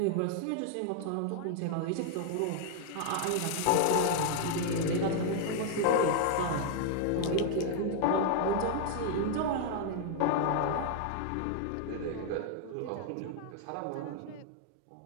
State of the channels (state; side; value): different; both; correlation 0.00